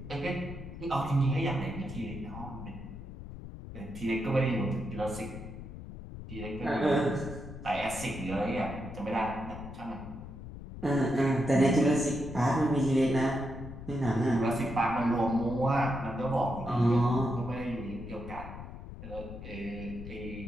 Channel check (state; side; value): noise; left; rumble, 11 dB below the sound